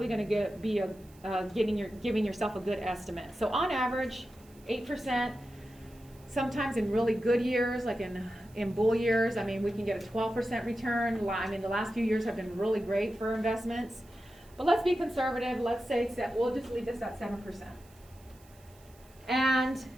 going to giving yourself a good estimate. So on average, 8%. Sometimes in really good years, like in bull years, I mean, we can get a 12% return. I mean, the last few years have been really great for investments. But let's be conservative. Let's say we'll just leave this at 7%. And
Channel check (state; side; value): noise; right; hiss, 27 dB below the sound